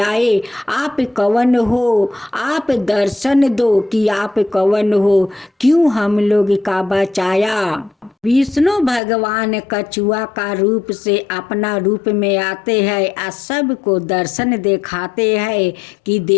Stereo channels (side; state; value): right; drops out; at 9.0 s